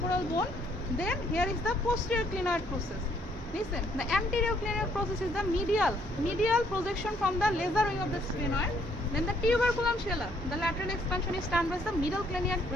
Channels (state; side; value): normal; both; correlation 0.67